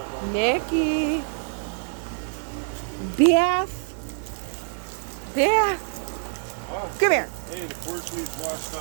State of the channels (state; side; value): silent; left; digital silence